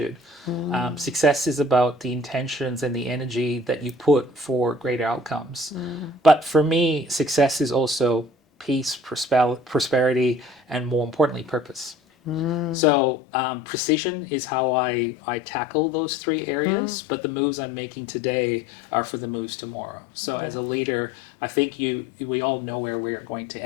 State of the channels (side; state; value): right; drops out; at 12.8 s